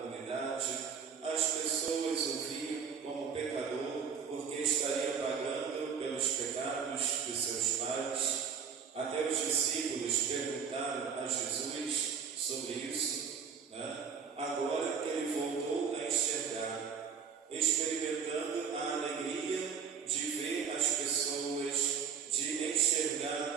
as pessoas o viam como pecador porque estaria pagando pelos pecados de seus pais. Até os discípulos perguntaram a Jesus sobre isso, Agora que ele voltou a enxergar, experimentando a alegria de ver as pessoas, de enxergar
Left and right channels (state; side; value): quieter; left; 6.7 dB